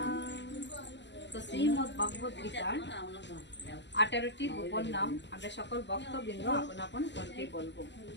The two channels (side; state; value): right; late; 0.52 ms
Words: তো শ্রীমদ্ ভগবদ গীতার 18টি গোপন নাম আমরা সকল ভক্তবৃন্দ আপন আপন কণ্ঠে বলবো।